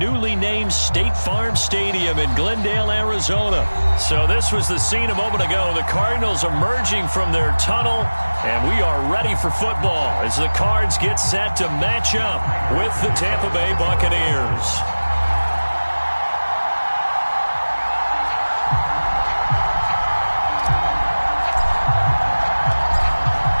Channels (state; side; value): inverted; both; correlation -1.00